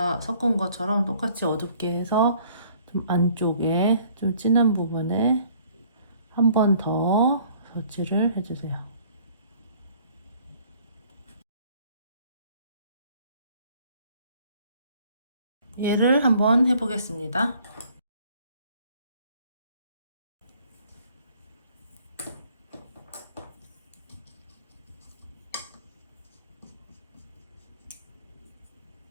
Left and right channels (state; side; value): inverted; both; correlation -0.57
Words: 섞은 것처럼 똑같이 어둡게 해서 좀 안쪽에 좀 진한 부분에 한 번 더 덧칠을 해주세요. 얘를 한번 해보겠습니다.